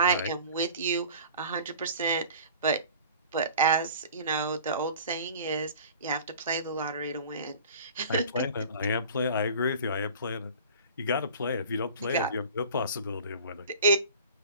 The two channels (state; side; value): inverted; both; correlation -0.42